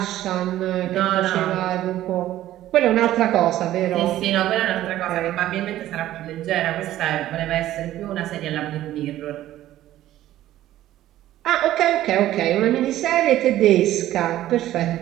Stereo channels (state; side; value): quieter; left; 13.8 dB